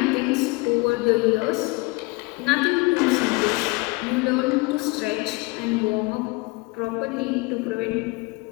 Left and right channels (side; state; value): right; quieter; 25.4 dB